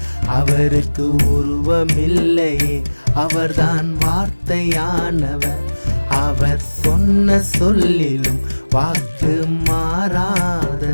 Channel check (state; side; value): inverted; both; correlation -1.00